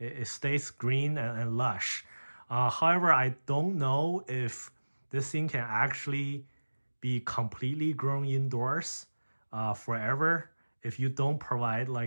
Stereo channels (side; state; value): both; inverted; correlation -1.00